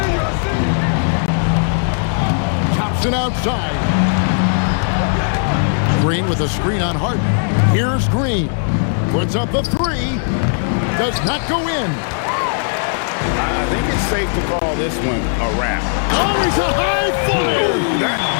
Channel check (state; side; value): silent; right; digital silence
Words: Thompson outside. Green with a screen on Harden. Here's Green. Puts up the 3. Does not go in. I think it's safe to call this one a wrap. Oh, he's a high flyer. That